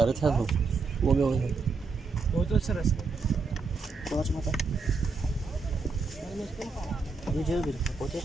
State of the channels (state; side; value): quieter; left; 4.3 dB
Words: था वो गया बहुत अच्छा रस पाँच माता ये जेल भी पोते